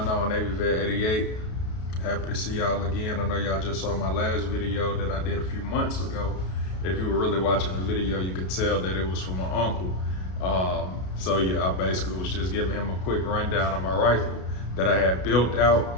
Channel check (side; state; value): right; late; 33 ms